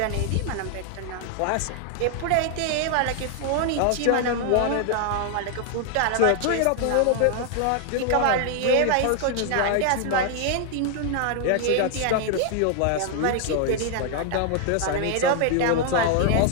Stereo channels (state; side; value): different; both; correlation 0.00